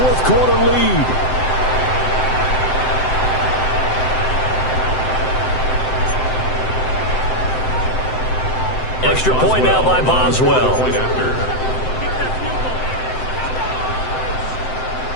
quarter lead. Extra point now by Boswell.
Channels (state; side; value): late; right; 7.8 ms